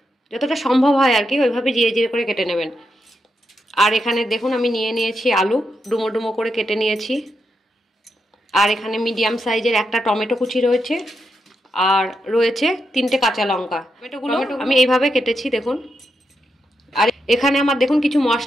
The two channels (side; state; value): both; normal; correlation 0.84